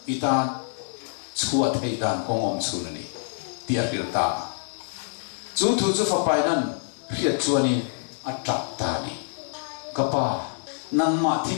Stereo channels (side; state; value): right; silent; digital silence